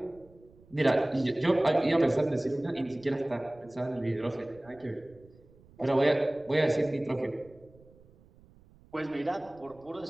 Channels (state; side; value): noise; right; rumble, 26 dB below the sound